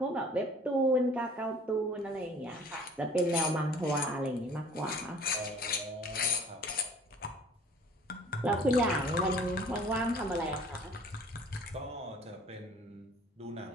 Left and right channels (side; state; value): both; normal; correlation 0.51